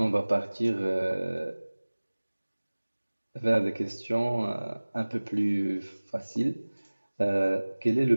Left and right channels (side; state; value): both; inverted; correlation -1.00